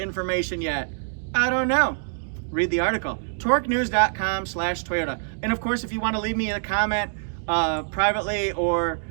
yet? I don't know. Read the article. torquenews.com/Toyota. And of course, if you want to leave me a comment privately or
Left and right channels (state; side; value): silent; left; digital silence